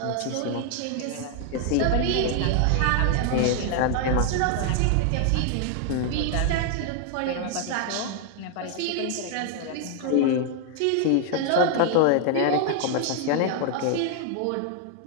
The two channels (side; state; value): both; different; correlation 0.00